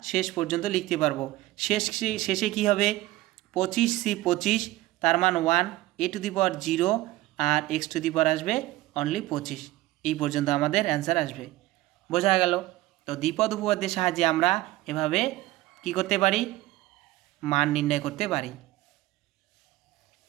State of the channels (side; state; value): left; quieter; 17.6 dB